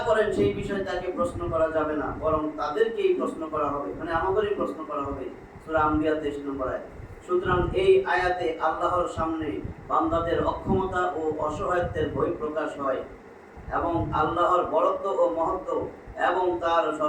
করেন সেই বিষয়ে তাকে প্রশ্ন করা যাবে না, বরং তাদেরকেই প্রশ্ন করা হবে, মানে আমাদেরই প্রশ্ন করা হবে। সূরা আম্বিয়া 23 নম্বর আয়াত। সুতরাং এই আয়াতে আল্লাহর সামনে বান্দাদের অক্ষমতা ও অসহায়ত্বের বহিঃপ্রকাশ হয়, এবং আল্লাহর বড়ত্ব ও মহত্ব এবং তার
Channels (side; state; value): both; identical; correlation 1.00